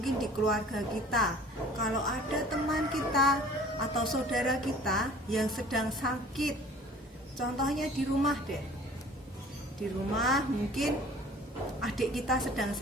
di keluarga kita, kalau ada teman kita atau saudara kita yang sedang sakit, contohnya di rumah deh, di rumah mungkin adik kita sedang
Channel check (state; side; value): normal; both; correlation 0.49